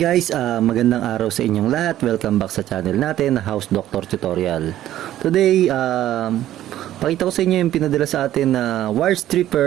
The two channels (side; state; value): left; quieter; 12.9 dB